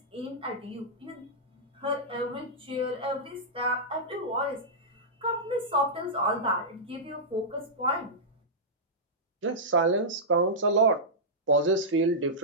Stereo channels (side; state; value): both; normal; correlation -0.12